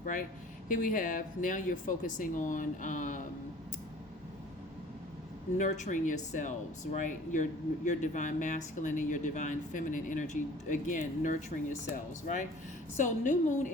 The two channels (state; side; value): normal; both; correlation 0.48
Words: right? Here we have, now you're focusing on nurturing yourselves, right? Your divine masculine and your divine feminine energy, again, nurturing yourselves, right? So new moon